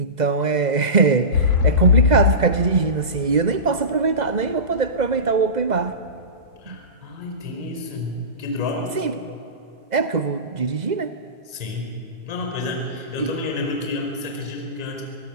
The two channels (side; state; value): left; late; 2.0 ms